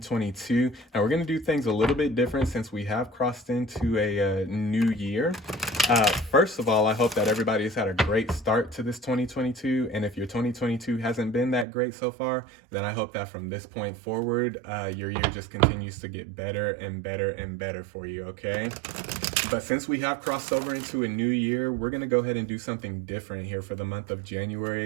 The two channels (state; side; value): drops out; left; at 11.7 s